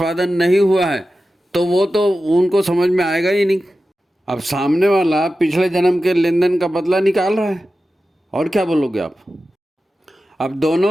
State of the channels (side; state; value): both; normal; correlation 0.93